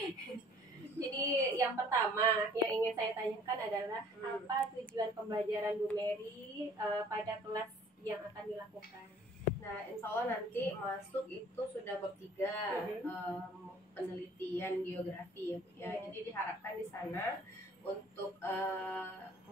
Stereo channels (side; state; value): both; normal; correlation 0.54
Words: Jadi yang pertama yang ingin saya tanyakan adalah apa tujuan pembelajaran Bu Mary pada kelas yang akan dilakukan? Nah, insya Allah nanti masuk itu sudah bab 3 penelitian geografi ya, Bu ya. Jadi diharapkan di sana untuk